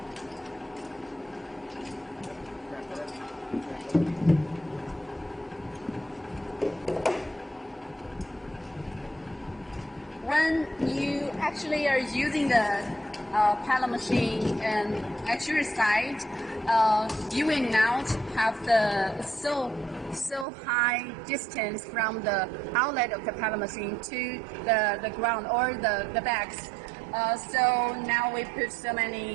When you actually are using the pellet machine and at your side, you will not have the so high distance from the outlet of the pellet machine to the ground or the bags. So now we put so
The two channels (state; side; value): drops out; left; at 20.5 s